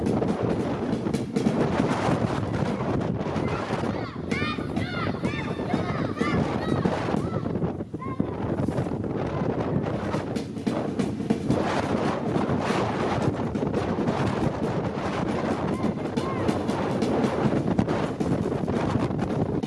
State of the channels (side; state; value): both; identical; correlation 1.00